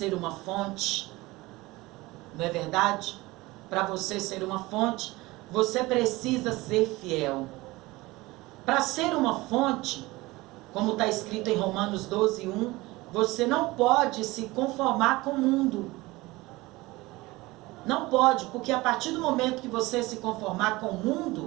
uma fonte. Não é verdade? Para você ser uma fonte, você precisa ser fiel. Para ser uma fonte, como está escrito em Romanos 12:1, você não pode se conformar com o mundo. Não pode, porque a partir do momento que você se conformar com o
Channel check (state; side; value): quieter; left; 20.8 dB